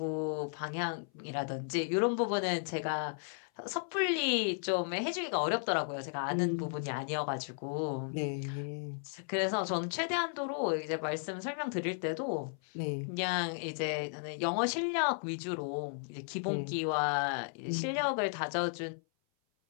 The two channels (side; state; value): right; silent; 55 dB below the other